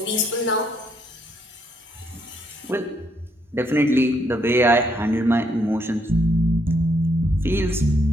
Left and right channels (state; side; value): normal; both; correlation 0.73